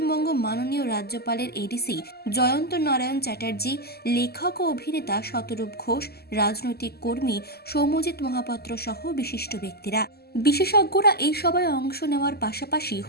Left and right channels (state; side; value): late; right; 0.46 ms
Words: মাননীয় রাজ্যপালের এডিসি জয়ন্ত নারায়ণ চ্যাটার্জি, লেখক ও অভিনেতা শতরূপ ঘোষ, রাজনৈতিক কর্মী সৌম্যজিৎ মহাপাত্র সহ বিশিষ্ট ব্যক্তিরা। বিশেষজ্ঞরা এই সভায় অংশ নেওয়ার পাশাপাশি